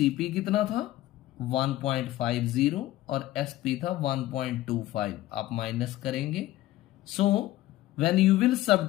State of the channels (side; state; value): right; quieter; 15.7 dB